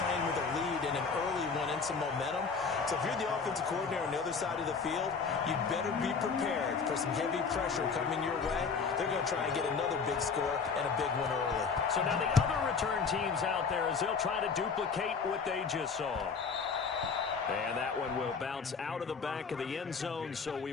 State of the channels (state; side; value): quieter; right; 5.3 dB